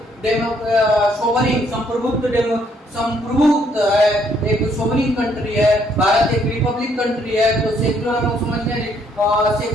सोवरिन संप्रभुत्व है, एक सोवरिन कंट्री है। भारत एक रिपब्लिक कंट्री है। तो सेकुलर हम लोग समझते हैं,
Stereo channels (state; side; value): normal; both; correlation 0.68